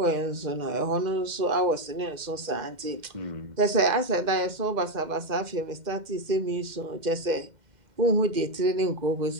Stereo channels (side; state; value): left; late; 2.1 ms